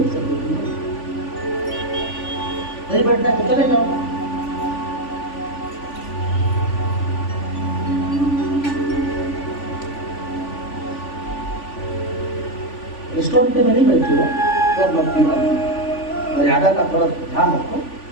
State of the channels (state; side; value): late; right; 3.5 ms